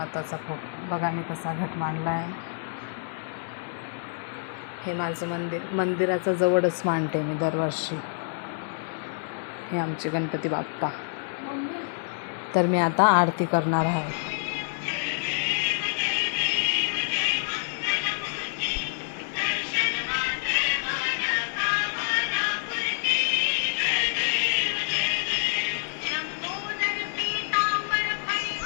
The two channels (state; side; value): silent; right; digital silence